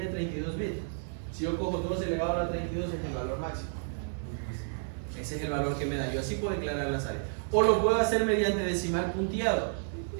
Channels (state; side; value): silent; left; 57 dB below the other